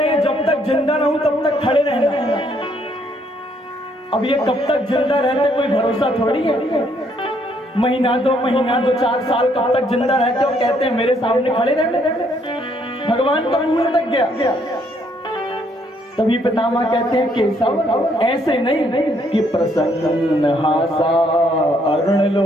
हैं जब तक जिंदा रहूं तब तक खड़े रहना। अब ये कब तक जिंदा रहते कोई भरोसा थोड़ी है। महीना दो 4 साल कब तक जिंदा रहते हो, कहते हैं मेरे सामने खड़े रहने। भगवान का मुंह लटक गया। तभी पितामह कहते हैं, केशव ऐसे नहीं कि प्रसन्न हासा अरुण लो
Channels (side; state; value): both; normal; correlation 0.69